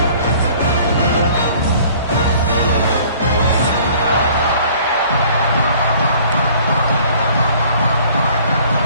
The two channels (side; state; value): both; inverted; correlation -0.53